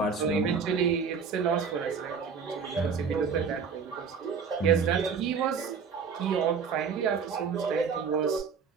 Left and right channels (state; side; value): quieter; left; 5.9 dB